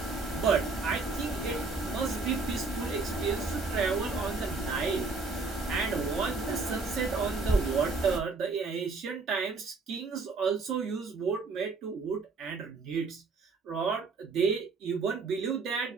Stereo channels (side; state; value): left; quieter; 4.0 dB